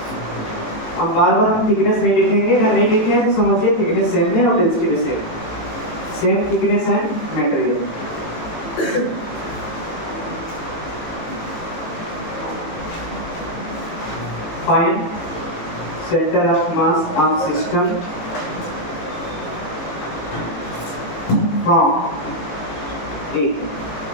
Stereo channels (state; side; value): late; right; 18 ms